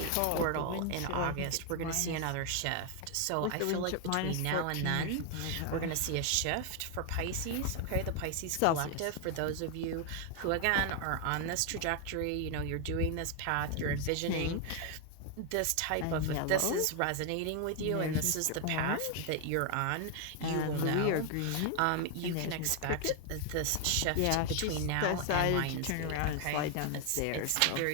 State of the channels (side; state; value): both; different; correlation 0.00